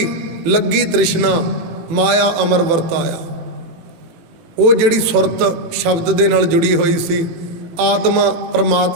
ਲੱਗੀ ਤ੍ਰਿਸ਼ਨਾ, ਮਾਇਆ ਅਮਰ ਵਰਤਾਇਆ। ਉਹ ਜਿਹੜੀ ਸੁਰਤ ਸ਼ਬਦ ਦੇ ਨਾਲ ਜੁੜੀ ਹੋਈ ਸੀ, ਆਤਮਾ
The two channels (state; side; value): late; left; 18 ms